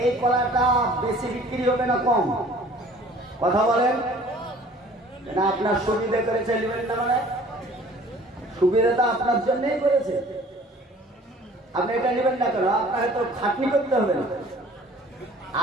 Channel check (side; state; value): both; normal; correlation 0.51